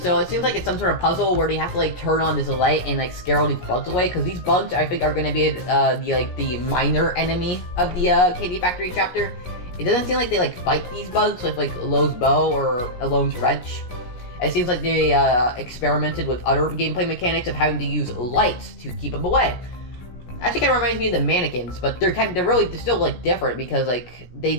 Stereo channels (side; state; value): right; late; 16 ms